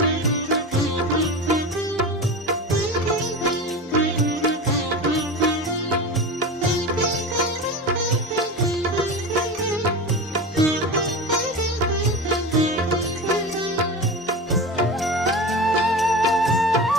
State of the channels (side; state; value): both; normal; correlation 0.27